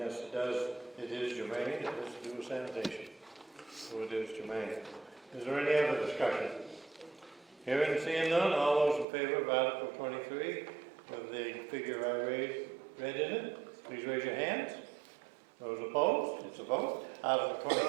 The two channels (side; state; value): left; drops out; at 9.1 s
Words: it is germane, it has to do with sanitation. So it is germane. Is there any other discussion? Hearing and seeing none, all those in favor of Article 23, with the figure I read in it, please raise your hands. Those opposed, it's a vote. Article